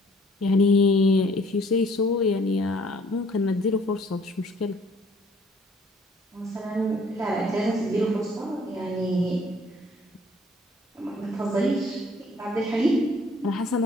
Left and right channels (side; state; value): both; normal; correlation 0.59